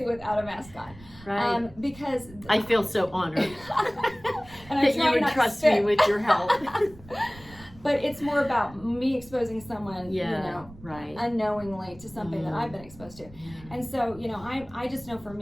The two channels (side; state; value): right; noise; rumble, 20 dB below the sound